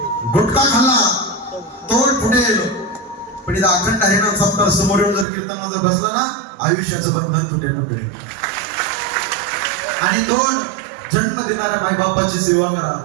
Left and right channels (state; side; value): drops out; left; at 5.2 s